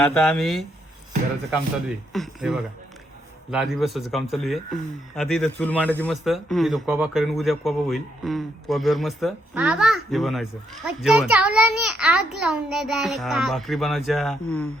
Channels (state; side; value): normal; both; correlation 0.76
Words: आम्ही घराचं काम चालू आहे. हे बघा लादी बसवायचं काम चालू आहे. आता इथं चूल मांडायची मस्त, इथं कोबा करेन, उद्या कोबा होईल. कोब्यावर मस्त बाबा हे बनवायचं मच्छर जेवण. चावलाने आग लावून दे डायरेक्ट. भाकरी बनवायच्या.